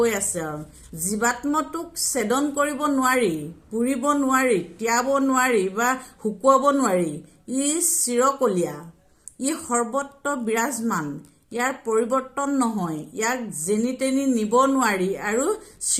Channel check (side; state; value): both; identical; correlation 1.00